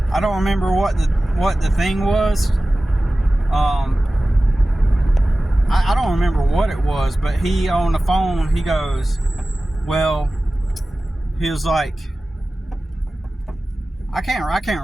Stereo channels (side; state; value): both; normal; correlation 0.96